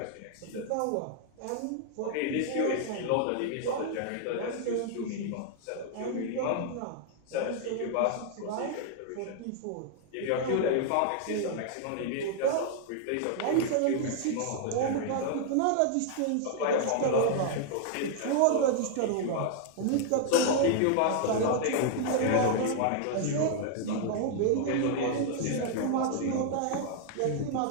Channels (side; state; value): both; different; correlation 0.00